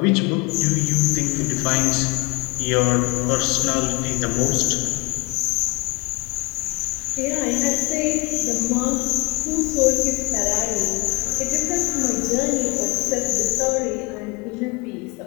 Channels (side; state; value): right; quieter; 25.8 dB